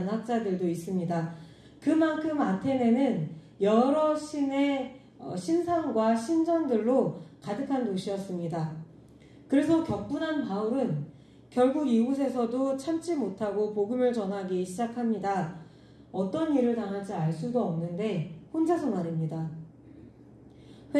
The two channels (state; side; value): identical; both; correlation 1.00